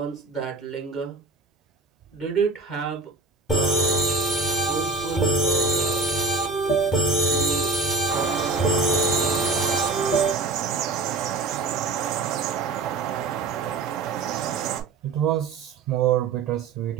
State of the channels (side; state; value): left; quieter; 3.8 dB